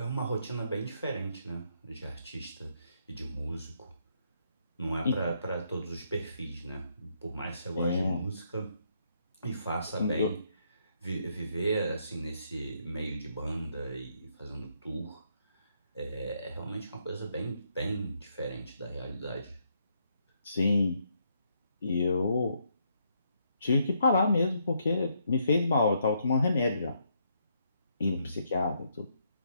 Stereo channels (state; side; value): inverted; both; correlation -0.75